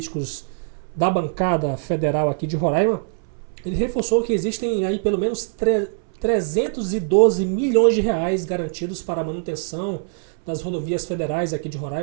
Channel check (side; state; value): left; silent; 64 dB below the other